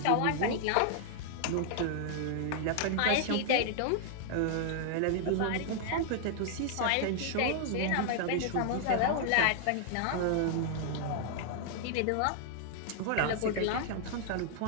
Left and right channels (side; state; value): both; different; correlation -0.01